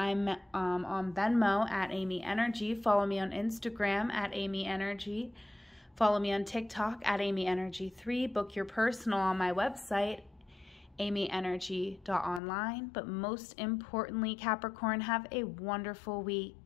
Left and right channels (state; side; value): drops out; right; at 12.4 s